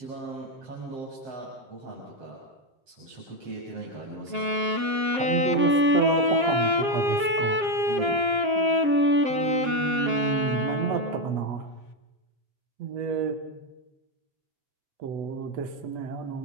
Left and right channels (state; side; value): late; left; 7.5 ms